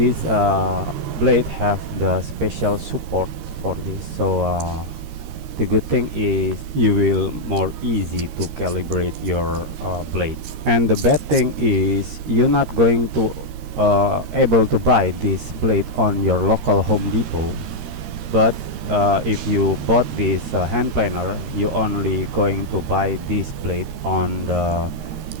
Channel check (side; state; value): left; late; 13 ms